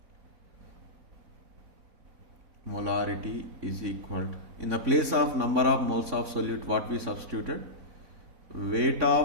in the place of number of moles of solute, what we substituted? Weight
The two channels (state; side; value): late; left; 3.6 ms